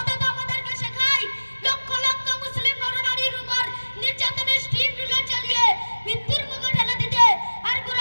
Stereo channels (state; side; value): inverted; both; correlation -1.00